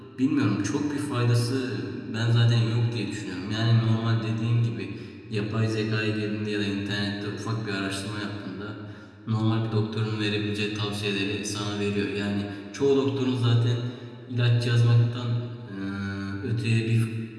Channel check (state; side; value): identical; both; correlation 1.00